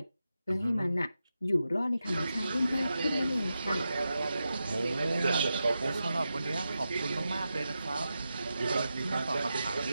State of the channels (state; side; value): inverted; both; correlation -0.90